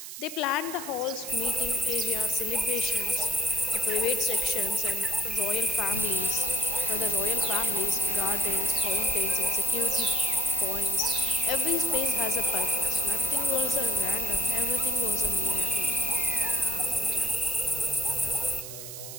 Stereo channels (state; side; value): noise; right; hiss, 10 dB below the sound